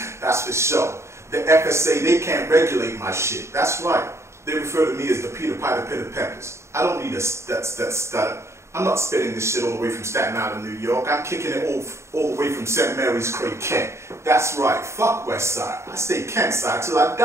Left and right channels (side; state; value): left; late; 0.13 ms